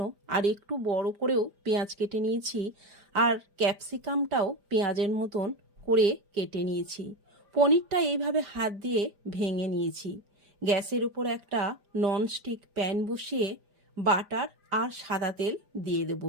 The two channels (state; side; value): late; left; 5.0 ms